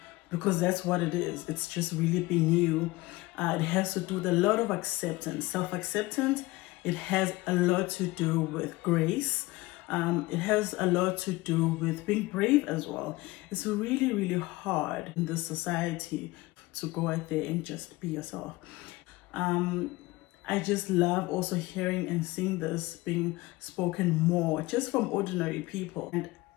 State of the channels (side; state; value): right; quieter; 20.7 dB